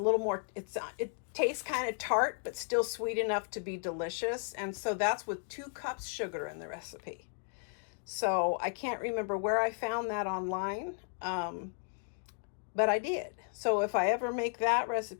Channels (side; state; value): right; silent; 55 dB below the other